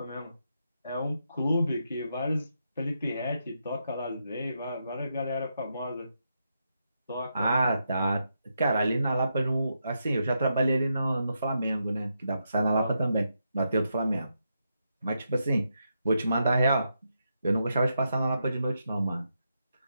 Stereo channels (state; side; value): inverted; both; correlation -0.83